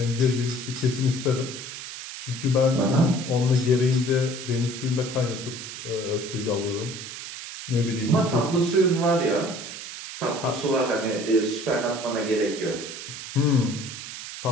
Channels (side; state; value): right; noise; hiss, 10 dB below the sound